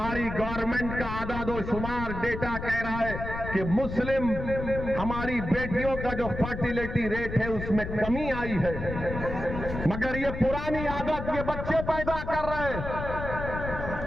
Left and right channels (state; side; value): noise; left; rumble, 7 dB below the sound